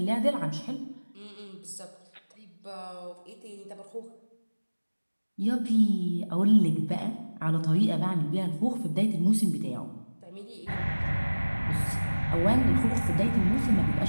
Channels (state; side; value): inverted; both; correlation -1.00